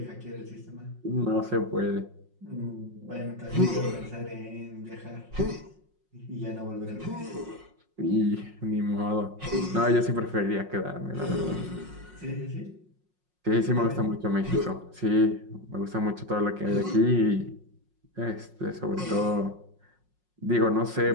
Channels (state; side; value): late; left; 5.5 ms